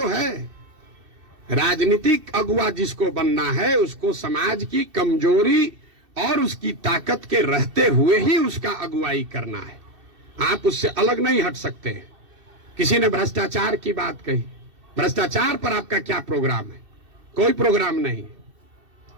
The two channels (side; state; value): left; late; 2.6 ms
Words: है। राजनीतिक अगुवा जिसको बनना है उसको समाज की कमजोरी और उसकी ताकत के रहते हुए ही उसका अगुवाई करना है। आप उससे अलग नहीं हट सकते। किसी ने भ्रष्टाचार की बात कही, भ्रष्टाचार पर आपका क्या प्रोग्राम है? कोई प्रोग्राम नहीं।